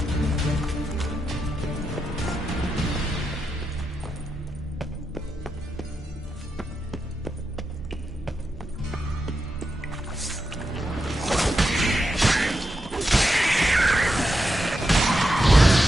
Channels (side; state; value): both; normal; correlation 0.87